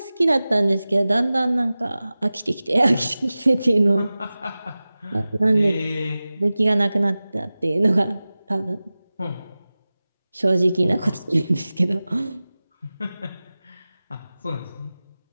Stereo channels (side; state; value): both; inverted; correlation -0.97